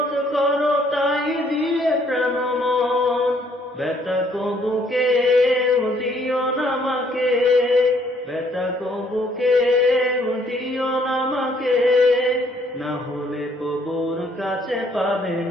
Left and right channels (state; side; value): normal; both; correlation 0.65